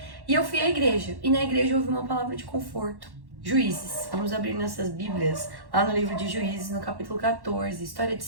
E eu fui à igreja, e na igreja eu ouvi uma palavra de conforto. Juízes, vamos abrir nossas Bíblias lá no livro de Juízes, no capítulo 14, história de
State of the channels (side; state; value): left; late; 1.1 ms